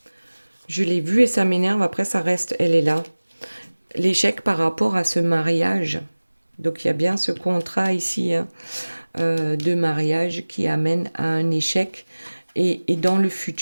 Je l'ai vue et ça m'énerve, après ça reste, elle est là. L'échec par rapport à ce mariage. Donc il y a bien ce contrat ici, hein, de mariage qui amène à un échec et dans le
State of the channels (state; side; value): inverted; both; correlation -1.00